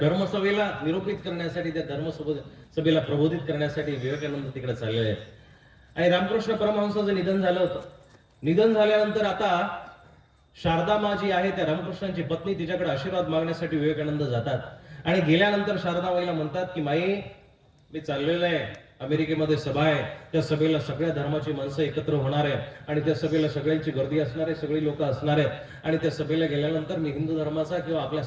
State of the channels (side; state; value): both; identical; correlation 1.00